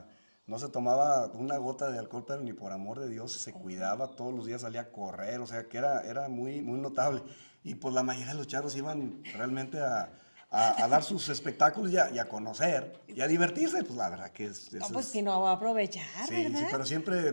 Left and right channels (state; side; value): inverted; both; correlation -1.00